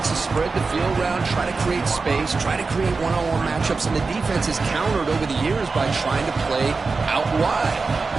to spread the field around, try to create space, try to create one-on-one matchups, and the defense is countered over the years by trying to play out wide.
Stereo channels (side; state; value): left; quieter; 4.2 dB